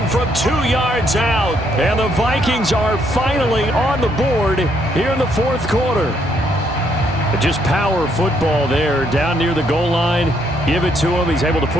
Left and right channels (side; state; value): both; normal; correlation 0.72